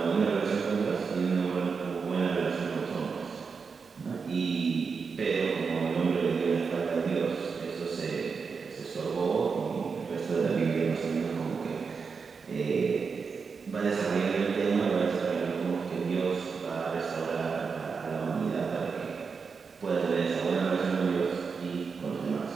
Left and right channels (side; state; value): left; quieter; 5.3 dB